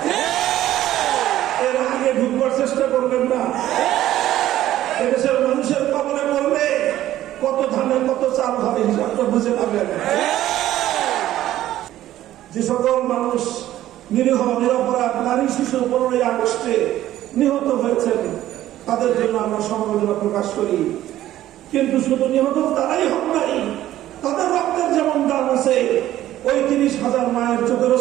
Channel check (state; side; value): quieter; left; 13.6 dB